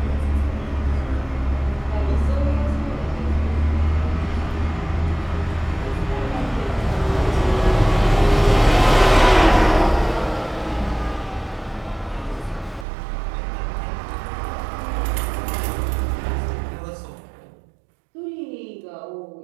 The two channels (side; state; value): left; drops out; at 12.9 s